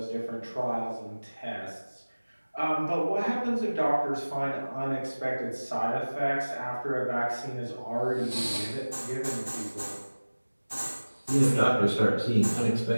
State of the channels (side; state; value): both; inverted; correlation -1.00